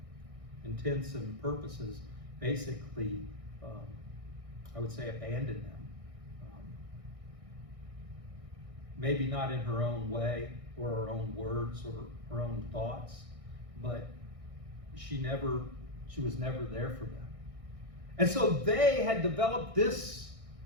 intents and purposes, basically, I would say, abandoned them. Maybe not in her own way or her own words or her own thoughts, but she was never there for them. And so they had developed this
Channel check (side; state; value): left; late; 1.6 ms